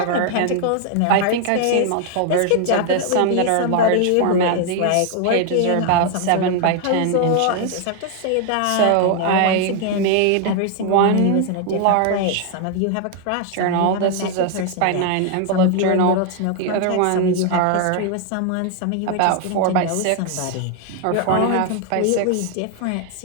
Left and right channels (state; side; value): different; both; correlation 0.00